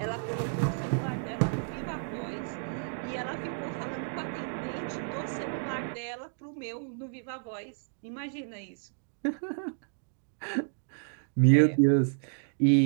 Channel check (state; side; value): silent; left; digital silence